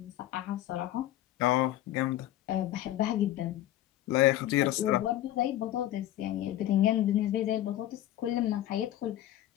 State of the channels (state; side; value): quieter; right; 13.5 dB